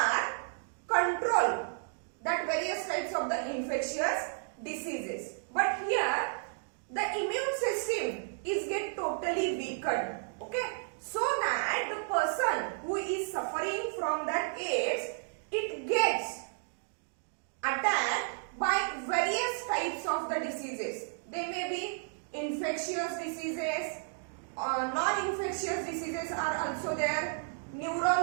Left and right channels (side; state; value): left; silent; digital silence